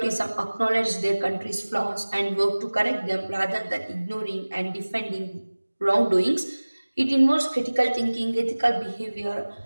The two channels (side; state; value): both; inverted; correlation -1.00